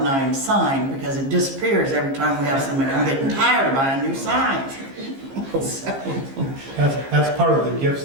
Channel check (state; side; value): late; left; 15 ms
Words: 9 sign, because it disappears every time we have somebody. I'm getting tired of buying new signs. So, That's part of the gifts